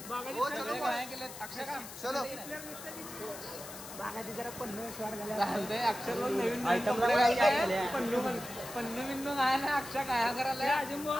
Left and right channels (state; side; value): noise; left; hiss, 12 dB below the sound